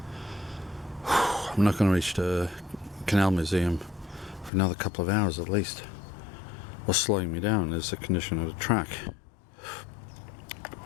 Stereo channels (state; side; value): drops out; right; at 4.5 s